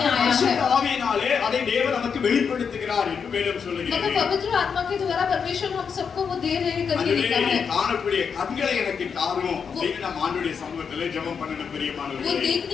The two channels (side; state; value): right; quieter; 6.4 dB